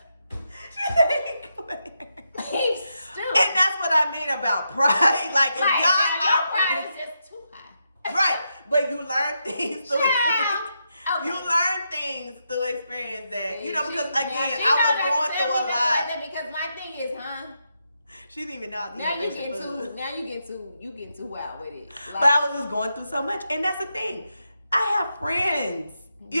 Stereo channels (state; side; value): inverted; both; correlation -0.84